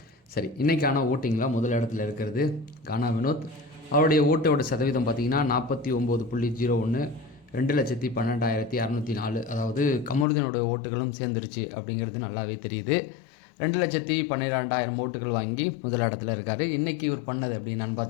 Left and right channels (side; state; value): right; drops out; at 10.2 s